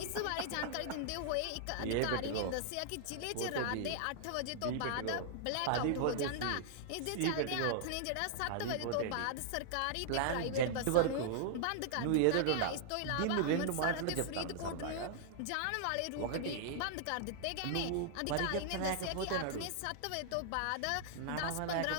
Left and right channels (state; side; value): different; both; correlation -0.01